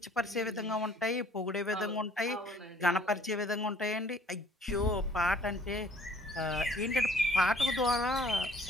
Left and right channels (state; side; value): normal; both; correlation 0.57